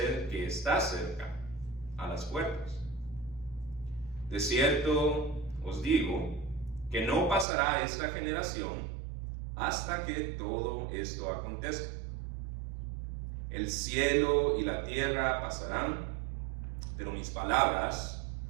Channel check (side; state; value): left; drops out; at 7.5 s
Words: que está cerca, a las puertas. De cierto os digo que no pasará esta generación hasta que todo esto acontezca. El cielo y la tierra pasarán, pero mis palabras